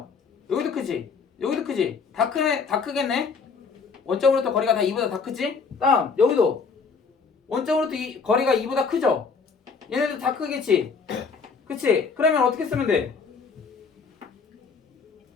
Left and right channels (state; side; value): quieter; right; 5.2 dB